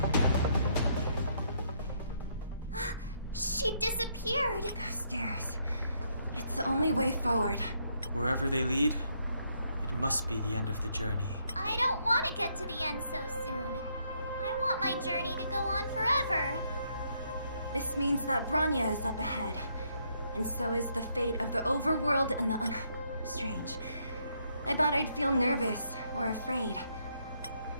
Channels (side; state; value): both; inverted; correlation -0.73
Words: She disappeared. Those stairs. It's the only way forward. Wherever they lead, it must be the end of the journey. I don't want to get to the end so soon. I want my journey to go on forever. This means that Bronya is up ahead. And so is the fate of the overworld and the Strange. I thought I'd feel nervous or afraid.